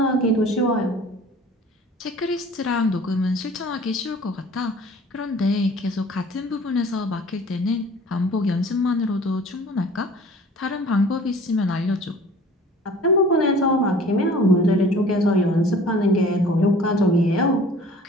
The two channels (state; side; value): normal; both; correlation 0.48